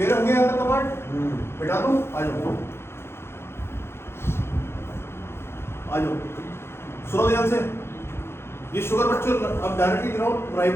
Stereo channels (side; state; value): right; late; 0.12 ms